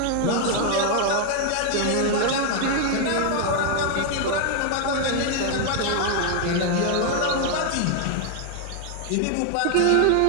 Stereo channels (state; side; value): different; both; correlation 0.00